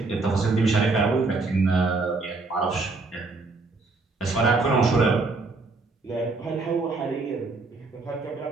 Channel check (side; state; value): left; quieter; 3.6 dB